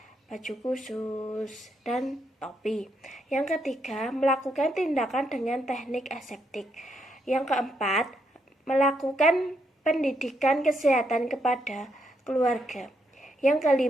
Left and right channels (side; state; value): both; normal; correlation 0.78